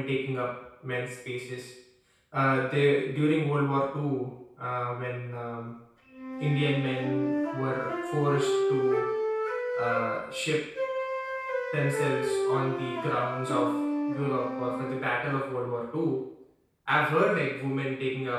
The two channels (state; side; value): identical; both; correlation 1.00